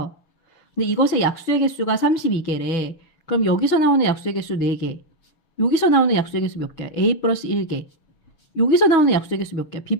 근데 이것의 약수의 개수가 32개래. 그럼 여기서 나오는 약수의 개수 4개. 여기서 나오는 약수의 개수 몇 개야? A 플러스 1개. 여기서 나오는 약수의 개수 몇 개야?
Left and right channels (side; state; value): right; late; 6.1 ms